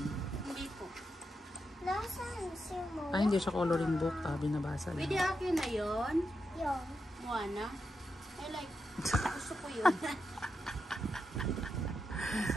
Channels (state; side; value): normal; both; correlation 0.86